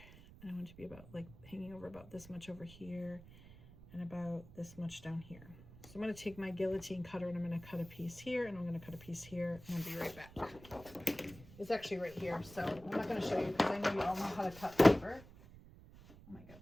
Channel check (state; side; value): noise; right; rumble, 19 dB below the sound